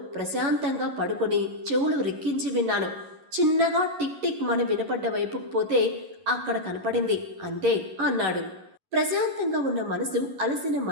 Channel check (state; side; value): late; left; 11 ms